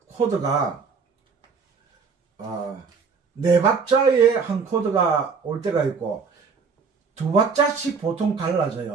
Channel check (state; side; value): quieter; left; 5.3 dB